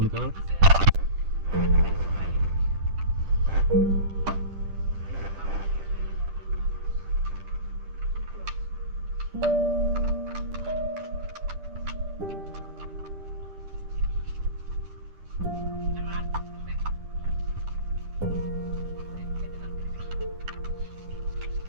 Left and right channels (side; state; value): left; late; 10 ms